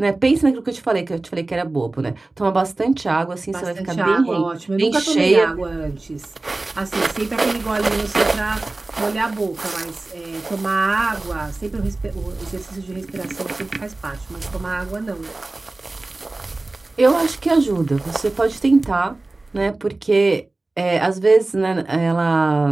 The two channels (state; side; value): quieter; left; 3.1 dB